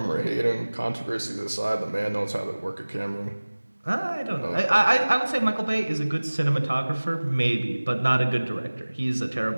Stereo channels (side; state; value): both; inverted; correlation -1.00